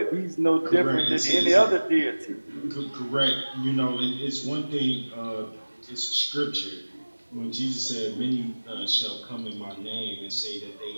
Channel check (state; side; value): inverted; both; correlation -1.00